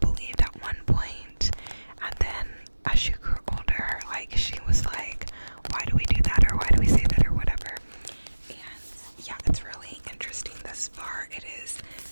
believed at one point, and then as she grew older, like she was like, why do we do that, or why do we say that, or whatever. And yeah, it's really interesting thus far. It is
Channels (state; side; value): inverted; both; correlation -1.00